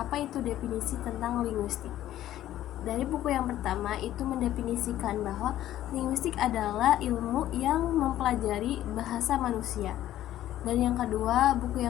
itu definisi tentang linguistik. Dari buku yang pertama itu mendefinisikan bahwa linguistik adalah ilmu yang mempelajari bahasa manusia. Dan yang kedua, buku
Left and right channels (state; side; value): quieter; right; 13.1 dB